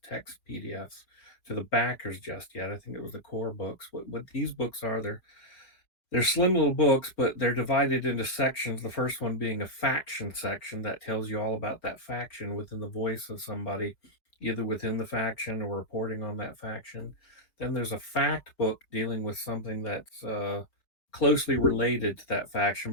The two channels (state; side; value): late; right; 4.5 ms